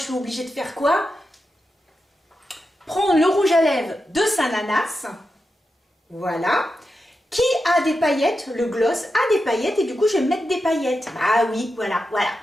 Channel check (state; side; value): normal; both; correlation 0.89